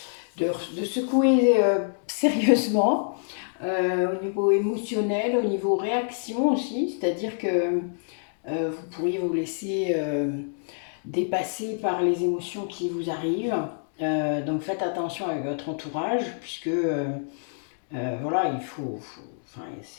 secouer sérieusement au niveau émotionnel, au niveau réaction aussi, c'est-à-dire que vous pourriez vous laisser dépasser par les émotions qui vous arrivent. Donc faites attention avec votre entourage, puisque voilà, enfin,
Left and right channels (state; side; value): silent; right; digital silence